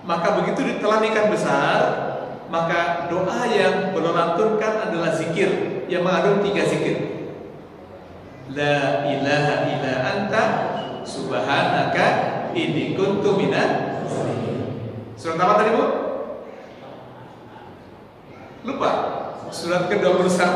Maka begitu ditelan ikan besar, maka doa yang beliau lantunkan adalah zikir yang mengandung 3 zikir. La ilaha illa anta subhanaka inni kuntu minaz zalimin. Surat apa tadi Bu? Lupa. Surat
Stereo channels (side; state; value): both; identical; correlation 1.00